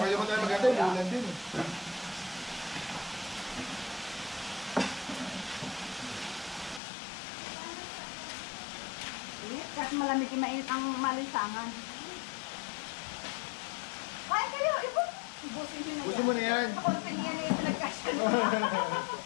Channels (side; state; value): right; drops out; at 6.8 s